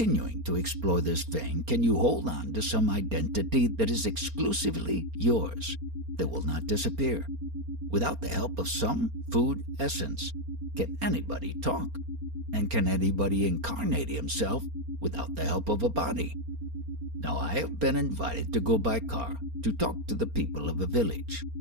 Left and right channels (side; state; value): left; late; 4.3 ms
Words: to explore this vein, can you hold on to some identity that is exclusively yours, that will not disappear? Without the help of some food essence, can anybody talk? And can anybody incarnate himself without the help of a body? Now I have been invited to go by car to talk to the people of a village.